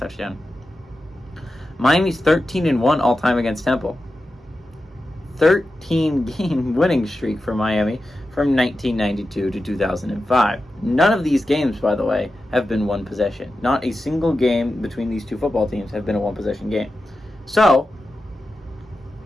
Miami's 13-1 all-time against Temple. 13-game winning streak for Miami from 1992 to 2005. None of these games, by the way, have been one possession. Not a single game between these two football teams have been a one-possession game. So,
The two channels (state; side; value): normal; both; correlation 0.91